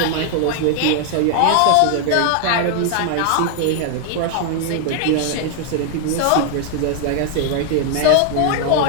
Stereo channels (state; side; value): different; both; correlation 0.00